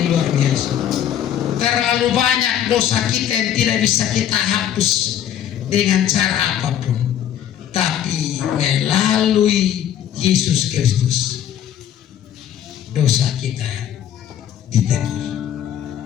luar biasa? Terlalu banyak dosa kita yang tidak bisa kita hapus dengan cara apapun, tapi melalui Yesus Kristus dosa kita ditebus.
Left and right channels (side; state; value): right; quieter; 10.4 dB